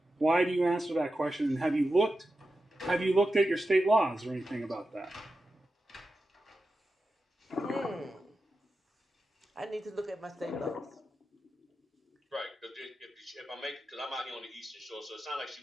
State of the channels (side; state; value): both; normal; correlation 0.91